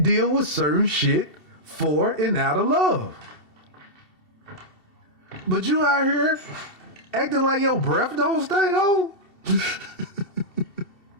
deal with certain shit for and out of love. But you out here acting like your breath don't stink, oh?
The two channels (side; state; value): right; late; 2.7 ms